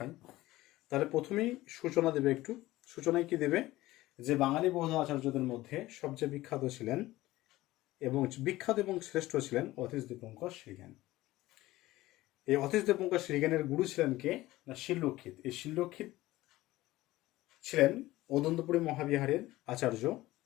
তাহলে প্রথমেই সূচনা দেবে একটু। সূচনায় কি দেবে, যে বাঙালি বৌদ্ধ আচার্যদের মধ্যে সবচেয়ে বিখ্যাত ছিলেন এবং শ্রেষ্ঠ ছিলেন অতীশ দীপঙ্কর শ্রীজ্ঞান। এই অতীশ দীপঙ্কর শ্রীজ্ঞানের গুরু ছিলেন কে না শিলরক্ষিত। এই শিলরক্ষিত ছিলেন অদন্তপুরী মহাবিহারের আচার্য।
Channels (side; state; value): right; quieter; 17.4 dB